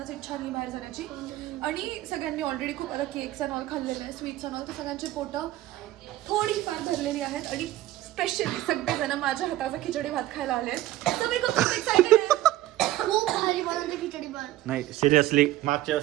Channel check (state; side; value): quieter; left; 15.4 dB